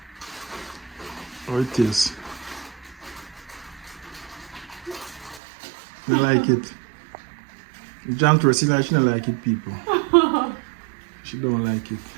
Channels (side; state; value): left; drops out; at 5.4 s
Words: How it tastes? You like it? Jam to her, she don't like it, people. She don't like it.